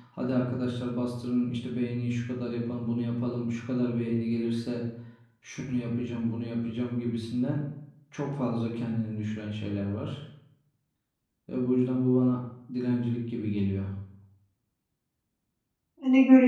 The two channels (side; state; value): both; identical; correlation 1.00